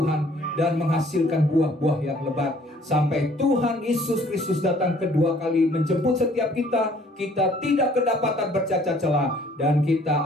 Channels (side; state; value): both; normal; correlation 0.58